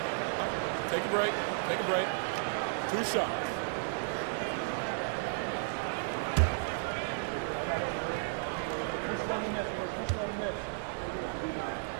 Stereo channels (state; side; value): silent; left; digital silence